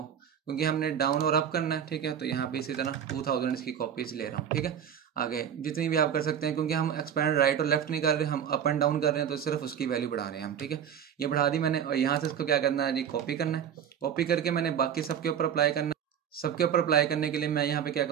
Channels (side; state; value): left; quieter; 8.6 dB